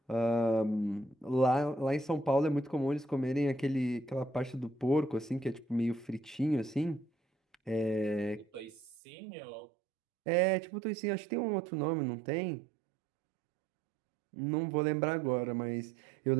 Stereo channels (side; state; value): left; drops out; at 9.0 s